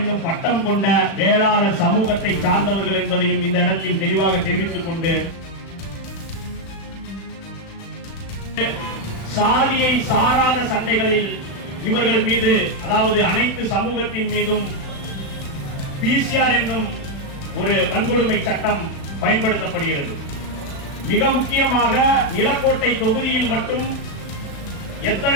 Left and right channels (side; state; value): right; late; 36 ms